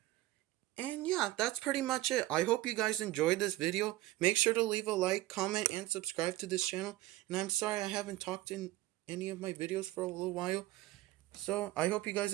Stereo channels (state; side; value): quieter; left; 17.0 dB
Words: And yeah, that's pretty much it. I hope you guys enjoyed this video. Make sure to leave a like, comment, and subscribe to this channel. And I'm sorry I haven't talked in any of my videos for a little while. So I hope you guys